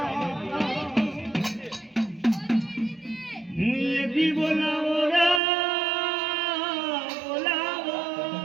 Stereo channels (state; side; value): drops out; left; at 5.4 s